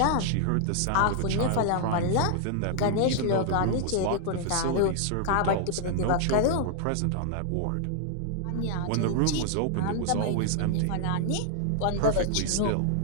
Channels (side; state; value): both; different; correlation 0.00